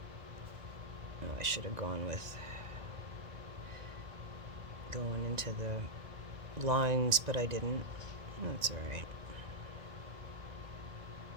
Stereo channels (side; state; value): left; late; 1.9 ms